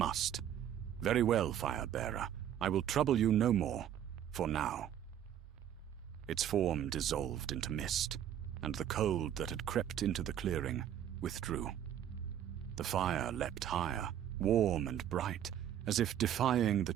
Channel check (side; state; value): left; quieter; 10.3 dB